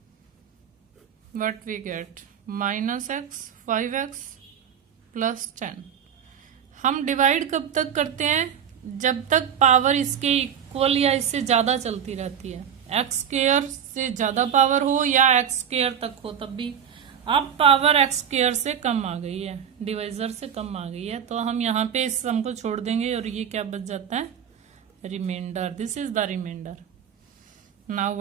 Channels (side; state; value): left; quieter; 8.4 dB